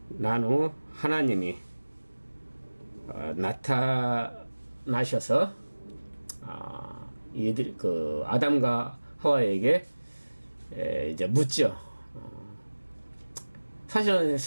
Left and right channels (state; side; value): inverted; both; correlation -1.00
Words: 난 후 하나님이 나타나셔서 이들 그 아담과 하와에게 이제 묻죠. 사실은